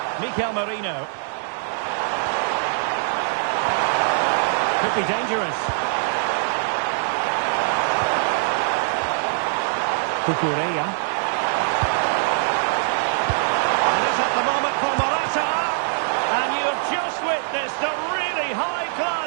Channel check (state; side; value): silent; left; digital silence